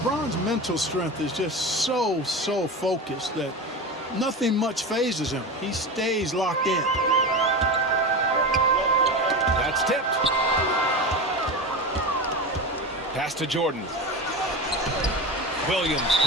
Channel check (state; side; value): normal; both; correlation 0.24